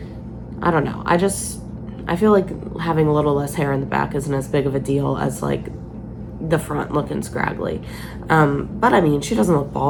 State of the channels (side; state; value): both; identical; correlation 1.00